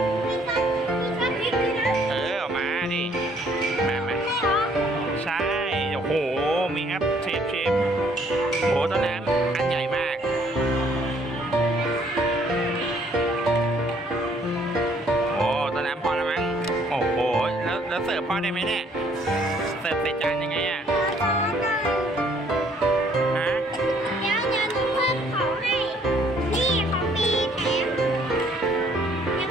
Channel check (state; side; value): normal; both; correlation 0.63